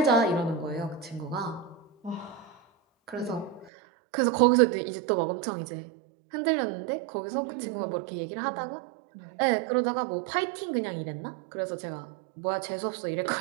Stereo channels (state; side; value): drops out; left; at 3.7 s